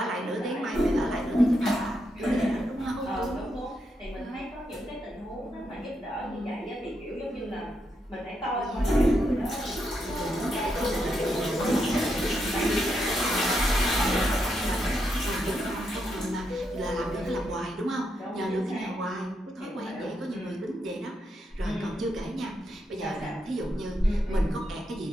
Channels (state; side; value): normal; both; correlation 0.82